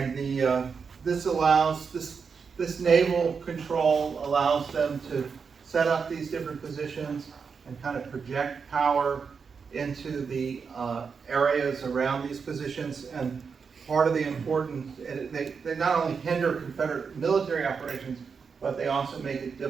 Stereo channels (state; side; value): quieter; left; 5.7 dB